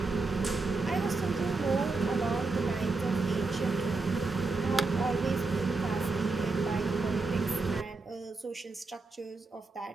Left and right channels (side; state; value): left; quieter; 3.7 dB